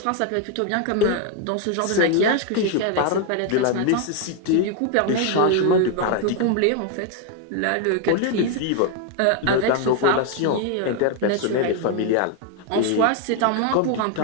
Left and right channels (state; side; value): different; both; correlation 0.01